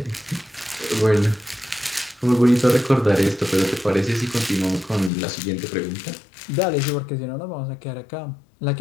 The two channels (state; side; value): drops out; right; at 5.1 s